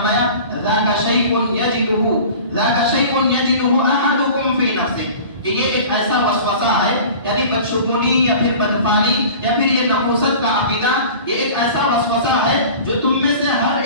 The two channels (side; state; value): both; inverted; correlation -0.41